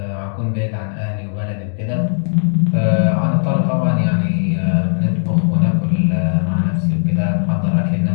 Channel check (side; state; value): right; silent; digital silence